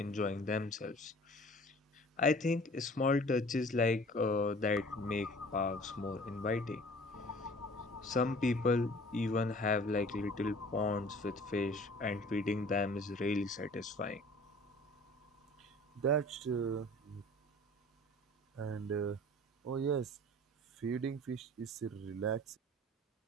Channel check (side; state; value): both; normal; correlation 0.48